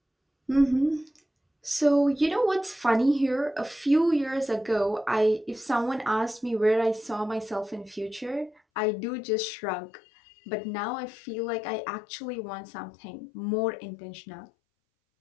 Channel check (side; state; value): right; drops out; at 8.6 s